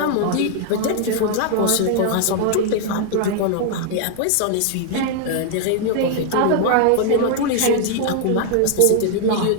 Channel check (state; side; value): different; both; correlation 0.00